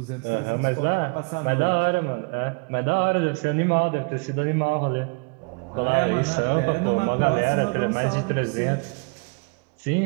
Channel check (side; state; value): left; quieter; 33.2 dB